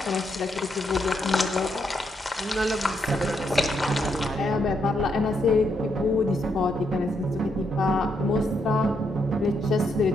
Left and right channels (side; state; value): both; normal; correlation 0.78